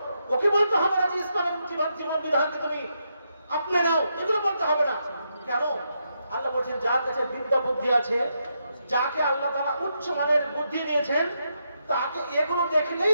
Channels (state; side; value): inverted; both; correlation -0.82